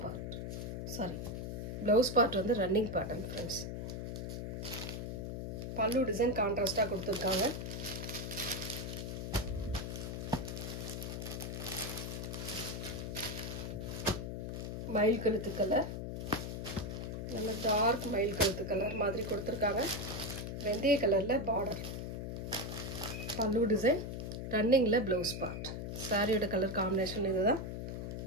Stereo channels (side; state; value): left; noise; hum, 5 dB below the sound